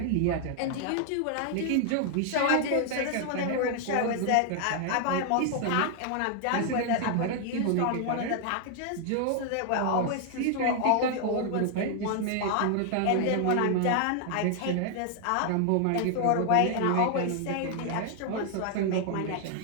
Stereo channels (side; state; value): both; different; correlation 0.00